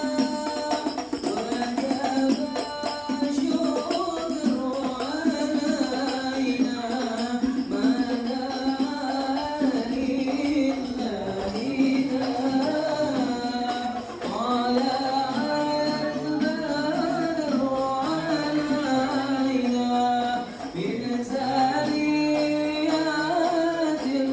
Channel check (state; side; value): identical; both; correlation 1.00